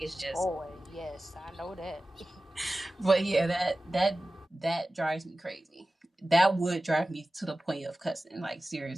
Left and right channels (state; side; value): normal; both; correlation 0.96